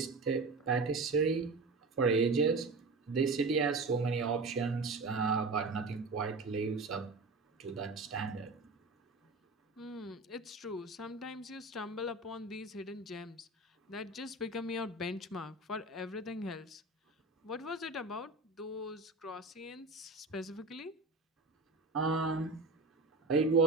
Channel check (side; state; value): left; quieter; 3.5 dB